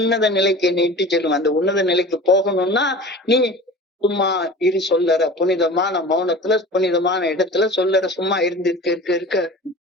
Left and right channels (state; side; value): normal; both; correlation 0.38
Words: நிலைக்கு என்னை இட்டு செல்லும். அந்த உன்னத நிலைக்கு போகணும்னா நீ சும்மா இரு சொல்லற புனிதமான மௌனத்துல புனிதமான இடத்துல சொல்லற சும்மா இருக்க